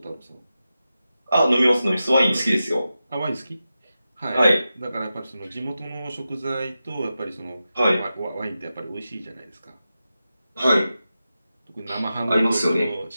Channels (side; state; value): both; inverted; correlation -0.92